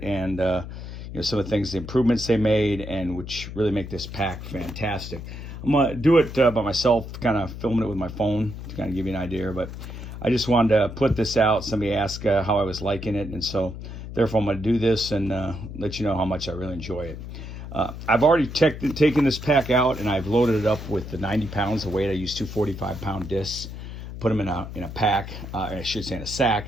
and some of the things, the improvements they made, and which really make this pack fantastic. I'm going to do it by myself, kind of filming it with my phone to kind of give you an idea. But I just wanted to put this out. Somebody asked how I was liking it. And so, therefore, I'm going to do this and let you know how much I really enjoy it. I've already taken this pack out, and I've loaded it up with the 90 pounds of weight. I use two 45-pound discs, put them in a pack, I should say in a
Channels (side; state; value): left; noise; hum, 10 dB below the sound